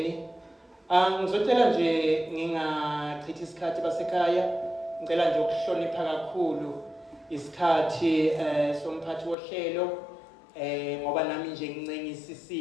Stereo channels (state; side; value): drops out; right; at 9.3 s